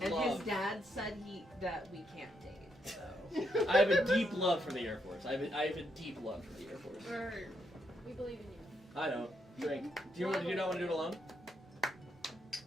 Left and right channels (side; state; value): both; normal; correlation 0.78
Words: And love. his dad said that we can't date. So I have a deep love for the Air Force. I have a deep love for the Air Force. Or- We believe in you. I know. Drink. Do you not want to do it alone?